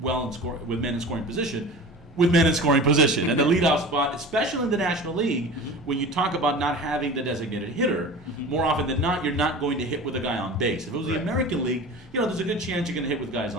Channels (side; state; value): both; normal; correlation 0.36